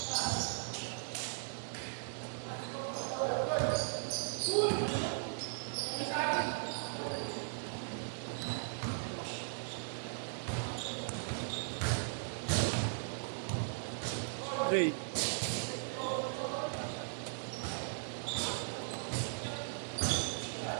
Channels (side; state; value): left; silent; digital silence